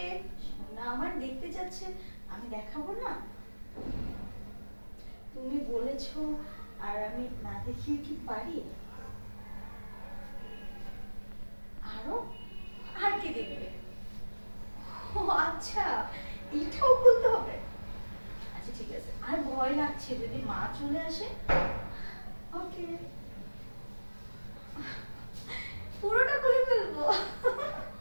সোনা আমার দেখতে যাচ্ছে, আমি দেখাবো না? তুমি বলেছো, আর আমি না দেখিয়ে কি পারি? আরো? আর কি দেখবে? ও আচ্ছা, এটাও খুলতে হবে। আচ্ছা ঠিক আছে, আর ভয় লাগছে যদি মা চলে আসে। ওকে, পুরোটা খুলে ফেলবো।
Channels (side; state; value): both; inverted; correlation -1.00